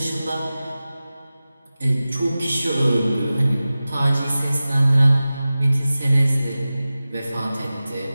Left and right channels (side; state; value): both; inverted; correlation -0.96